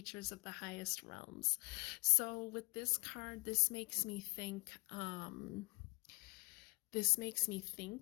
of the highest realms. So with this card, this makes me think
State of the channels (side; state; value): right; quieter; 27.1 dB